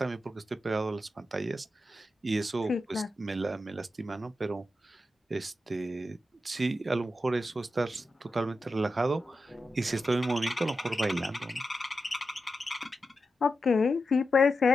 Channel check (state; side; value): normal; both; correlation 0.89